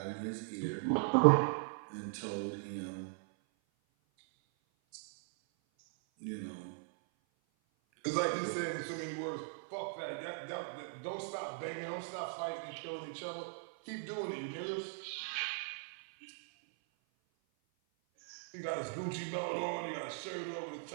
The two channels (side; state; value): left; silent; 52 dB below the other